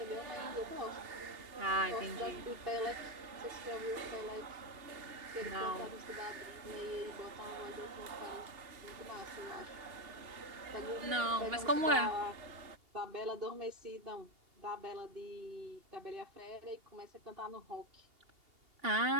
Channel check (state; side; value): late; left; 2.8 ms